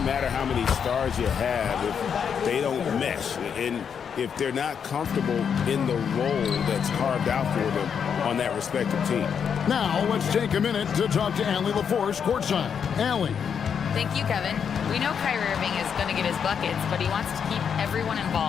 matter how many stars you have if they don't mesh. And if they're not comfortable in the role that's carved out for them on that respective team. Now, let's take a minute to talk to Allie LaForce courtside. Allie. Thank you, Kevin. We know Kyrie Irving is going to get his buckets, but he wants to keep everyone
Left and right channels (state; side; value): quieter; right; 7.3 dB